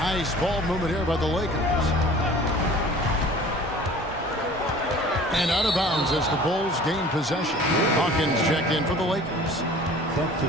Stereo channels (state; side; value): normal; both; correlation 0.46